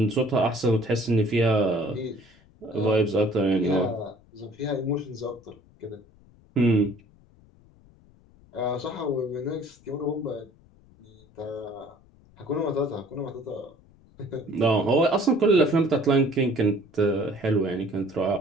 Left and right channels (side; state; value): left; noise; rumble, 28 dB below the sound